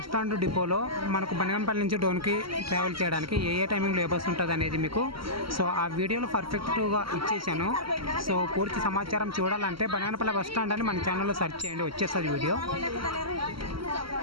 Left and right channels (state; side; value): late; left; 0.74 ms